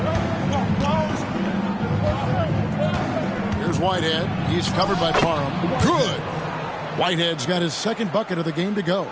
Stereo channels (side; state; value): both; identical; correlation 1.00